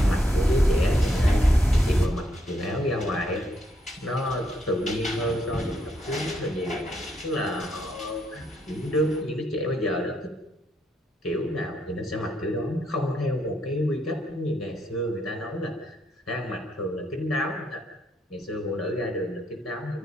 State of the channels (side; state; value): both; normal; correlation 0.76